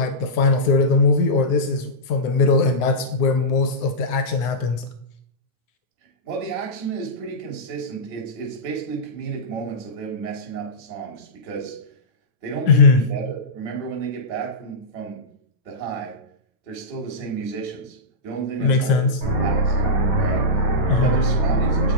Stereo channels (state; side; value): late; right; 9.6 ms